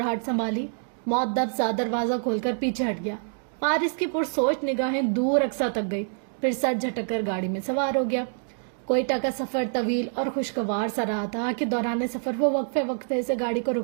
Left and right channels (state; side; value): silent; left; digital silence